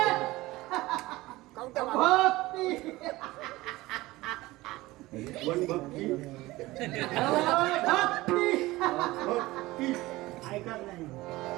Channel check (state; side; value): quieter; left; 19.1 dB